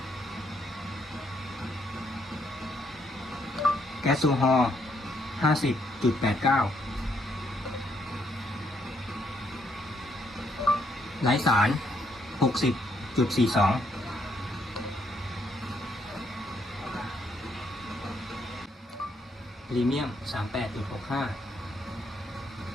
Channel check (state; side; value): normal; both; correlation 0.73